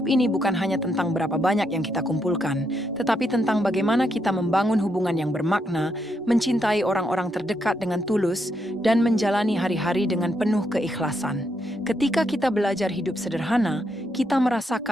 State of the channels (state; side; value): normal; both; correlation 0.79